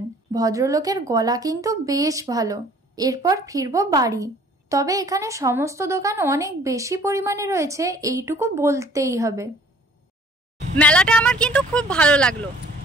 ভদ্রলোকের গলা কিন্তু বেশ ভালো। এরপর ফিরবো বাড়ি। তবে এখানে সমস্ত দোকান অনেক বেশি পরিমাণে রয়েছে, এইটুকু বলতেই হবে। মেলাটা আমার কিন্তু খুব ভালো লাগলো।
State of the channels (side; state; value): both; normal; correlation 0.54